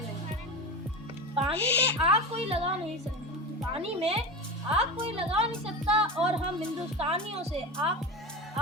पानी में आग कोई लगा नहीं सकता, पानी में आग कोई लगा नहीं सकता और हम हिंदुस्तानियों से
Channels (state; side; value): normal; both; correlation 0.25